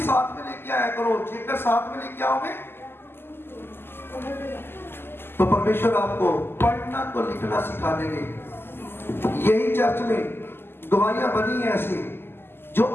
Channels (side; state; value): right; late; 0.11 ms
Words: साथ में लेके आया करो। जेकर साथ में लेके आओगे तो परमेश्वर आपको पढ़ना तो लिखना सिखा देंगे। यही चर्च में गवाहियां बनी है ऐसी, जो